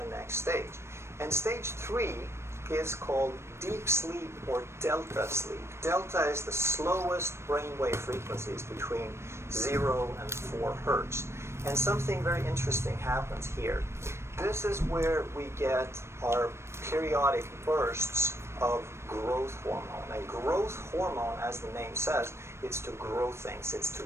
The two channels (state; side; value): late; left; 0.13 ms